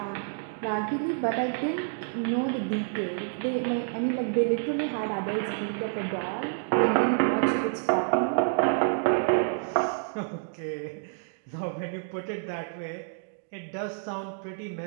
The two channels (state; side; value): silent; left; digital silence